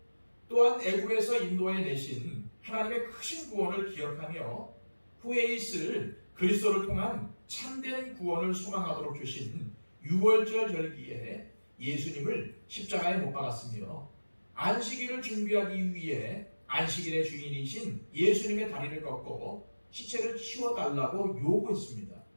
또한 애굽에서 인도해 내신 하나님의 크신 구원을 기억하며 후에 있을 그리스도를 통한 참된 구원을 소망하도록 주신 유월절 절기에 예수님을 십자가에 못 박았으며 안식일을 준비하기 위해 안식일의 주인이신 예수님의 다리를 꺾고 시체를 치워달라고 요구했습니다.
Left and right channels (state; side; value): inverted; both; correlation -1.00